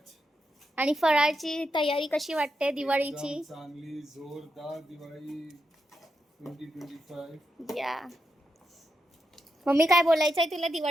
आणि फराळची तयारी कशी वाटते दिवाळीची. चांगली जोरदार दिवाळी 2025. या मम्मी, काय बोलायचं आहे तुला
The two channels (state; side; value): normal; both; correlation 0.86